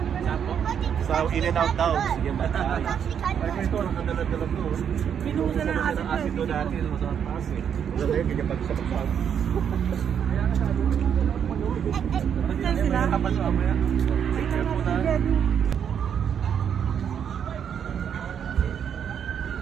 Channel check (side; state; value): left; quieter; 8.2 dB